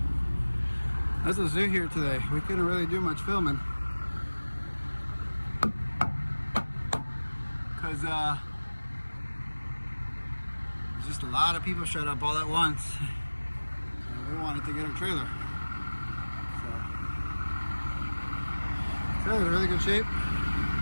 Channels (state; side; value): inverted; both; correlation -1.00